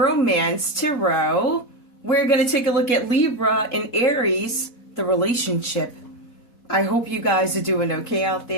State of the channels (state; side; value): late; right; 4.1 ms